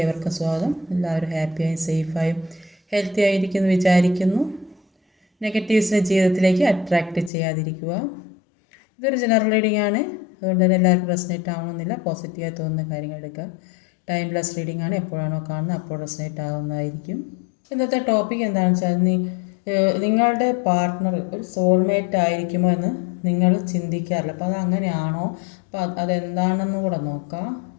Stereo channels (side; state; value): right; drops out; at 7.3 s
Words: ഏവർക്കും സ്വാഗതം. എല്ലാവരും ഹാപ്പിയായും സേഫായും ഹെൽത്തി ആയിരിക്കുന്നു വിചാരിക്കുന്നു. നെഗറ്റീവ്സിനെ ജീവിതത്തിലേക്ക് അട്രാക്റ്റ് ചെയ്യാതിരിക്കുക. ഇതൊരു ജനറൽ റീഡിംഗ് ആണ്, അതുകൊണ്ട് തന്നെ എല്ലാവർക്കും റെസനേറ്റ് ആവണമെന്നില്ല. പോസിറ്റീവായി തോന്നുന്ന കാര്യങ്ങൾ എടുക്കുക. ടൈംലെസ് റീഡിംഗ് ആണ്, എപ്പോഴാണോ കാണുന്നത് അപ്പോൾ റെസനേറ്റ് ആവുന്നതായിരിക്കും. ഇന്നത്തെ ടോപ്പിക് എന്താണെന്ന് വെച്ചാൽ, നിങ്ങളുടെ പാർട്ട്ണർ ഒരു സോൾമേറ്റ് ആയിരിക്കുമോ എന്ന് നിങ്ങൾ ചിന്തിക്കാറില്ല. അപ്പോൾ അത് അങ്ങനെയാണോ, അപ്പോൾ അതെന്താണെന്ന് കൂടെ നോക്കാം.